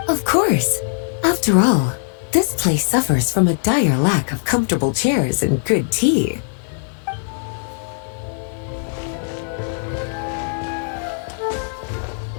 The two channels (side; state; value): right; silent; 65 dB below the other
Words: Of course. After all, this place suffers from a dire lack of comfortable chairs and good tea.